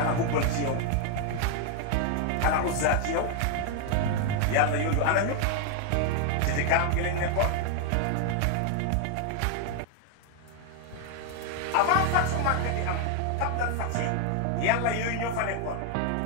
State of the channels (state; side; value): different; both; correlation 0.00